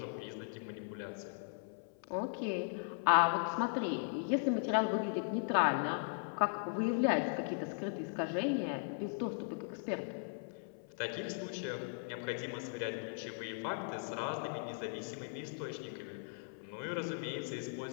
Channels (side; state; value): right; silent; 52 dB below the other